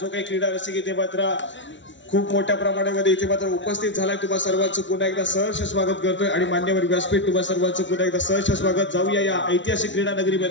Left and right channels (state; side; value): late; right; 0.54 ms